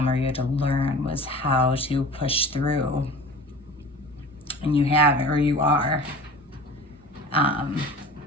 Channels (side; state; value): both; normal; correlation 0.39